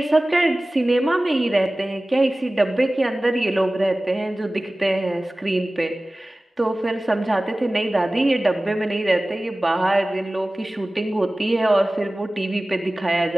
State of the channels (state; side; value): normal; both; correlation 0.97